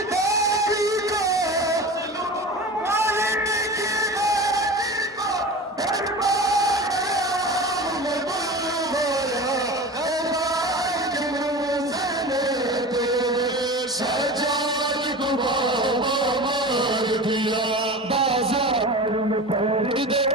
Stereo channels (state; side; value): normal; both; correlation 0.32